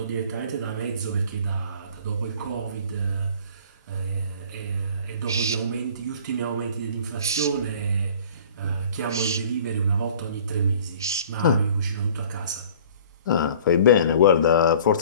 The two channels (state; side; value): inverted; both; correlation -0.48